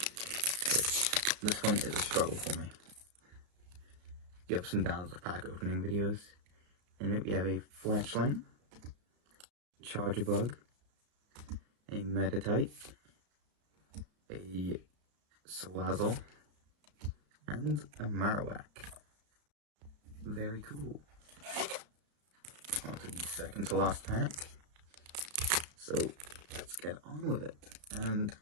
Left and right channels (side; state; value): left; late; 33 ms